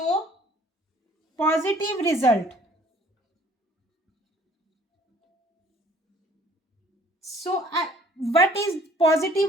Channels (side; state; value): both; normal; correlation 0.55